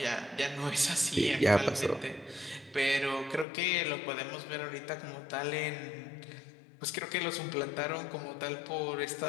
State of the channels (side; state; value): right; drops out; at 3.5 s